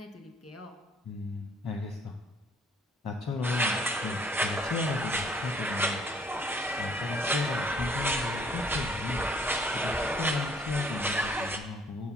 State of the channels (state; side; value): normal; both; correlation 0.60